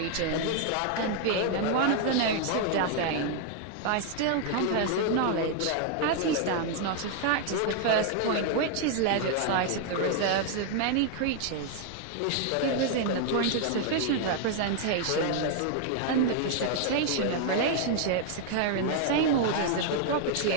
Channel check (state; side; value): different; both; correlation 0.00